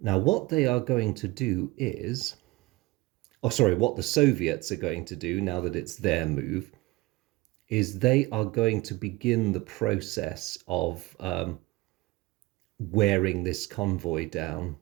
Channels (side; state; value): left; quieter; 21.0 dB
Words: what they are going to do is, what the Soviets are going to do now that it's their move, is they are going to begin the process of wearing this convoy down.